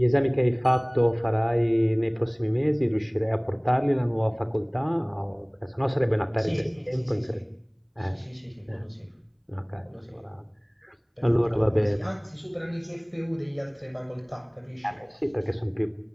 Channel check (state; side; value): identical; both; correlation 1.00